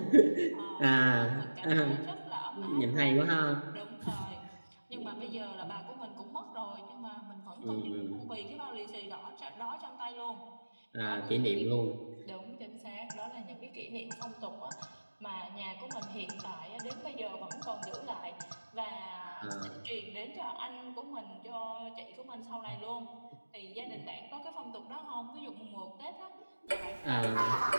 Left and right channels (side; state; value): both; inverted; correlation -1.00